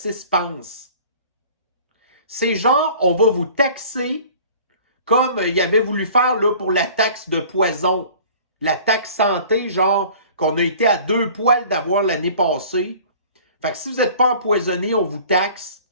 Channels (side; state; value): both; inverted; correlation -0.47